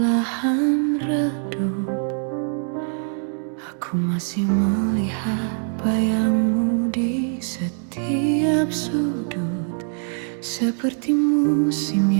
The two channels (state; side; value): silent; left; 62 dB below the other